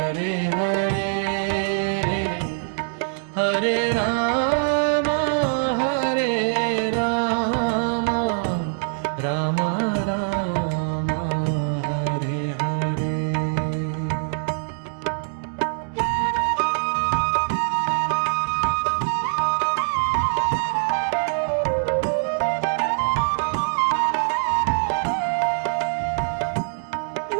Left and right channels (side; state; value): left; silent; digital silence